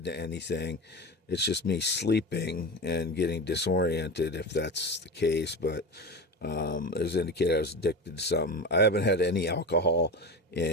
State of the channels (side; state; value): both; normal; correlation 0.25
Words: to anything. It's just me sleeping and getting disoriented, if that's the case. But it was indicated I was addicted to something. I haven't had any alcohol